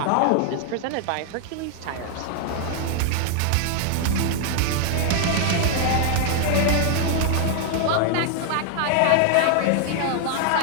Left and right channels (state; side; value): different; both; correlation 0.00